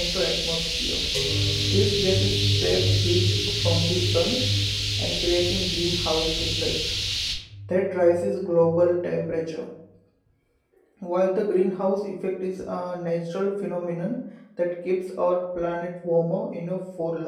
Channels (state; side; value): identical; both; correlation 1.00